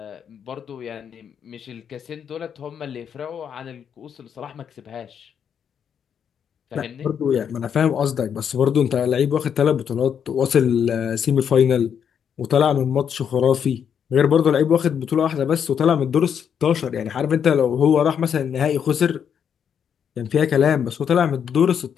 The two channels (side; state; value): right; quieter; 8.0 dB